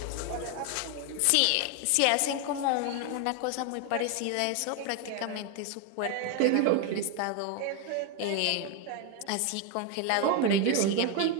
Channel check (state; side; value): different; both; correlation 0.01